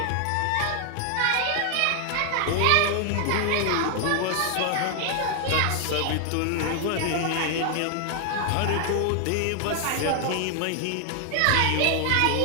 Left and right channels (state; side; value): different; both; correlation 0.00